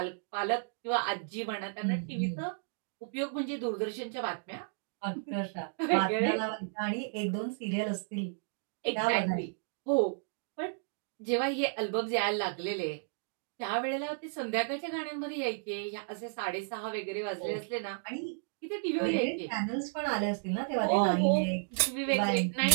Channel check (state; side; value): silent; left; digital silence